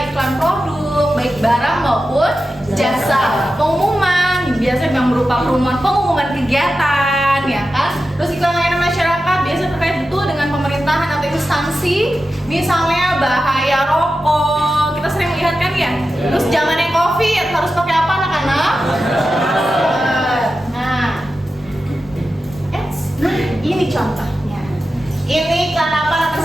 iklan produk, baik barang maupun jasa. Pengumuman biasa yang berupa pengumuman kegiatan, ya kan? Terus iklan layanan masyarakat biasa terkait betul dengan pemerintahan atau instansi, misalnya bahaya rokok. Kita sering lihat kan ya. Terus zamannya COVID harus pakai apa anak-anak? Nah, ini contohnya. Ini iklan apa nomor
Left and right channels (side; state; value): both; normal; correlation 0.92